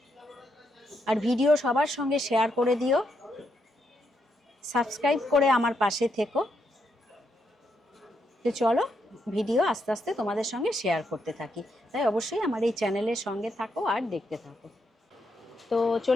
আর ভিডিও সবার সঙ্গে শেয়ার করে দিও, সাবস্ক্রাইব করে আমার পাশে থেকো। তো চলো ভিডিও আস্তে আস্তে তোমাদের সঙ্গে শেয়ার করতে থাকি, তাই অবশ্যই আমার এই চ্যানেলের সঙ্গে থাকো আর দেখতে থাকো। তো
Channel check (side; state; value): both; normal; correlation 0.79